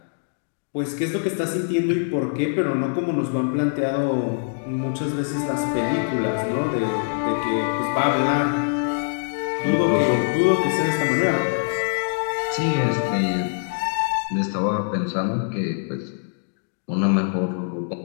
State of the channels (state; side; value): silent; right; digital silence